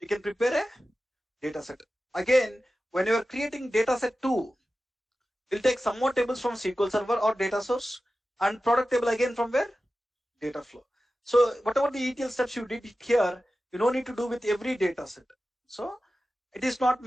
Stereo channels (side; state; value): both; normal; correlation 0.94